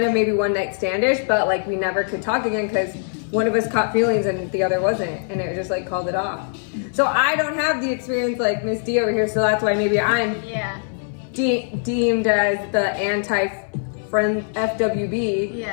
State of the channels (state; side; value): silent; right; 61 dB below the other